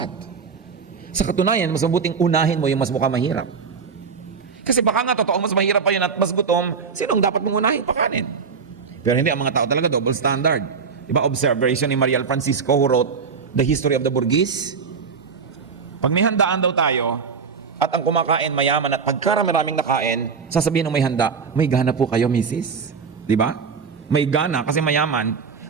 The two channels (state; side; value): quieter; left; 5.7 dB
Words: Sa katunayan, mas mabuting unahin mo yung mas mukhang mahirap. Kasi baka nga totoo, mas mahirap pa yun at mas gutom, sinong dapat mong unahin? Pakanin. Pero hindi, ang mga tao talaga double standard. Diba, observation ni Mariel Francisco who wrote The History of the Burgess? Pag may handaan daw tayo, at ang kumakain mayaman at pagkarami-raming nakain, sasabihin ng may handa, may gana po kayo, misis. Diba? May gana kasi mayaman.